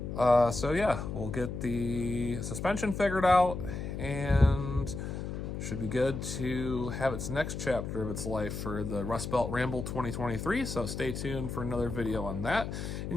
So yeah, we'll get the suspension figured out and should be good to have its next chapter of its life for the Rustbelt Ramble 2023. So stay tuned for another video on that.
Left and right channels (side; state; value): left; noise; hum, 5 dB below the sound